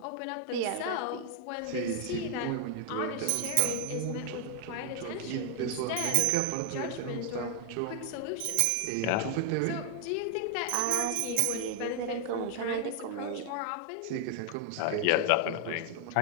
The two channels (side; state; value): both; different; correlation 0.00